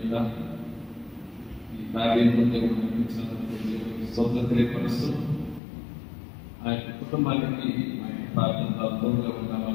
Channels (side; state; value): right; drops out; at 5.6 s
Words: ఈ కార్యంలో దేవుడు నడిపించినటువంటి స్తోత్రం తెలియపరుస్తూ ఆ యొక్క కుటుంబానికి మా యొక్క ప్రార్థనతో అర్థంగా